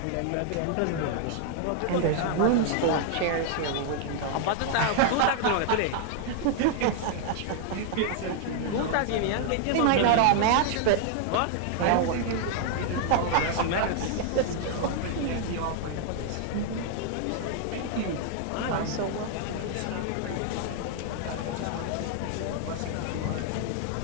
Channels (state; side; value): different; both; correlation 0.00